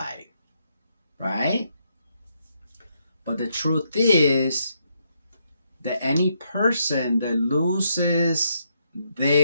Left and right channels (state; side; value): inverted; both; correlation -0.77